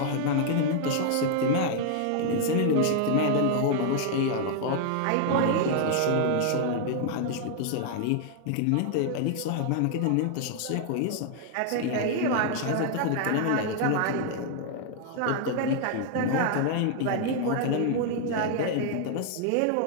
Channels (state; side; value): different; both; correlation 0.00